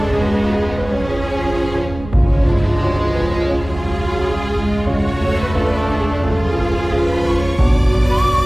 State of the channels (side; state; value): right; noise; rumble, 14 dB below the sound